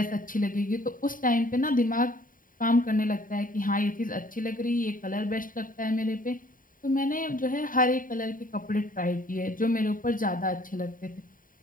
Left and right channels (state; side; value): late; right; 0.40 ms